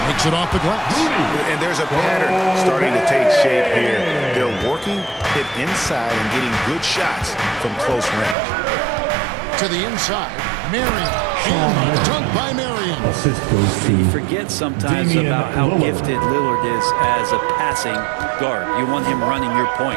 Makes it off the glass. And there's a pattern starting to take shape here. They're working it inside and getting good shots from close range. To the inside, Marion. And dunk by Marion. Assist goes to Forget sometimes Damian about how Lillard. gifted Lillard is as a passing guard. You want him running your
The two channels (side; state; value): left; drops out; at 8.3 s